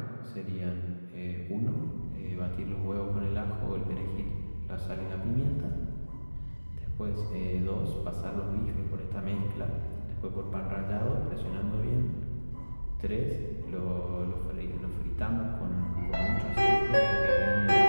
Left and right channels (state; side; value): inverted; both; correlation -1.00